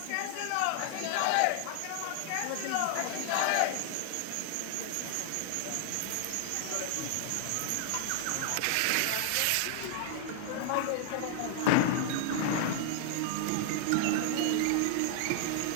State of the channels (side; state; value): both; different; correlation 0.00